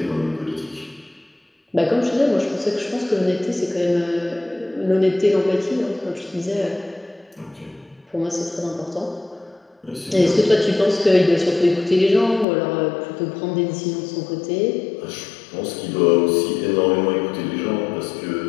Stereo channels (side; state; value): right; drops out; at 12.5 s